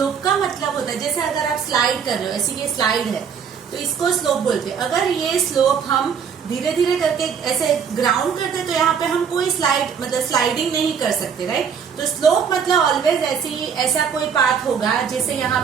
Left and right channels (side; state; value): left; quieter; 7.0 dB